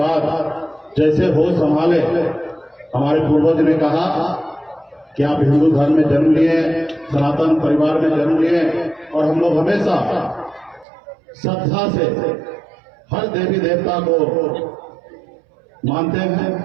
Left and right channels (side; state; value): left; drops out; at 10.9 s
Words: जैसे होश संभाले हमारे पूर्वज ने कहा कि आप हिंदू धर्म में जन्म लिए, सनातन परिवार में जन्म लिए और हम लोग हमेशा श्रद्धा से हर देवी देवता को मानते हैं।